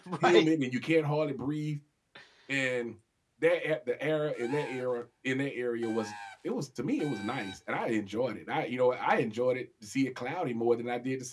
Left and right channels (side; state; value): both; identical; correlation 1.00